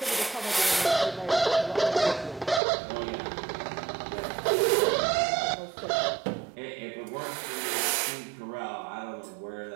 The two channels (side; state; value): left; drops out; at 2.6 s